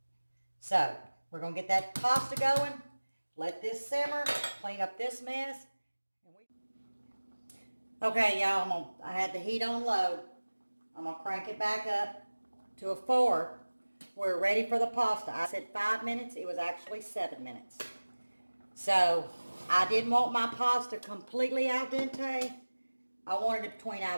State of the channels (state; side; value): inverted; both; correlation -1.00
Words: So we're going to get that pasta going. Let this simmer. Clean up this mess. Okay, y'all. I had the heat on low. I'm going to crank it back up to a 4. We're ready for the pasta. I said 5 minutes. It was actually 7 minutes. So I didn't want my pasta completely al dente. I wanted it between